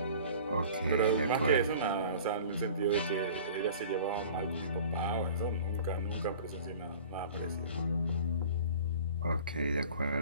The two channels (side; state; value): both; inverted; correlation -0.44